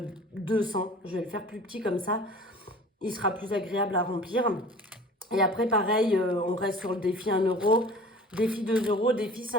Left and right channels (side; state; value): both; normal; correlation 0.43